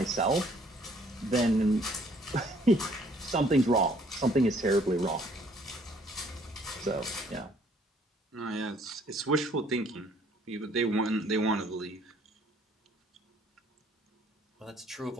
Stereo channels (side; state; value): both; normal; correlation 0.61